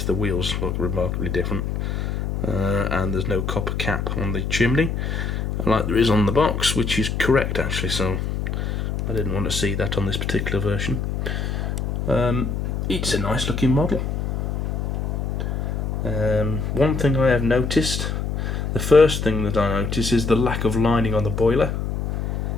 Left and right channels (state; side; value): noise; left; hum, 2 dB below the sound